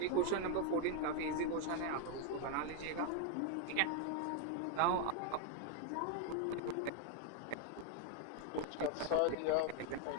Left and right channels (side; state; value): both; different; correlation 0.00